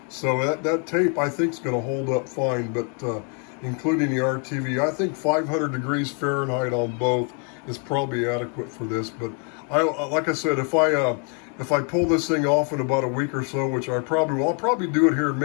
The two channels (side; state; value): right; quieter; 39.6 dB